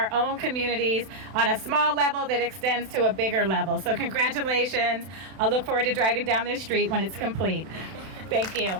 own communities on a small level that extends to a bigger level. So congratulations. I'll look forward to driving down this street when it's complete. Thank you.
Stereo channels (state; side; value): late; left; 32 ms